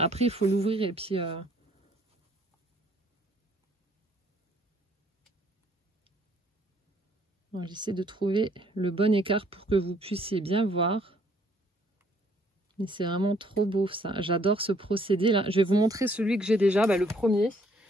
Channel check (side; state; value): both; normal; correlation 0.64